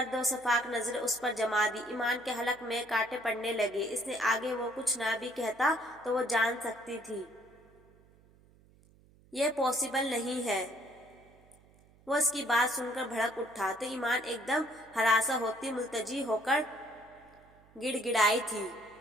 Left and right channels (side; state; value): right; noise; hum, 28 dB below the sound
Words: و شفاف نظریں اس پر جما دی۔ ایمان کے حلق میں کانٹے پڑنے لگے۔ اس نے آگے وہ کچھ نہ بھی کہتا تو وہ جان سکتی تھی یہ پاسبل نہیں ہے۔ وہ اس کی بات سن کر بھڑک اٹھا تو ایمان ایک دم ہراساں ہوتی ملتجی ہو کر گڑ گڑائی تھی۔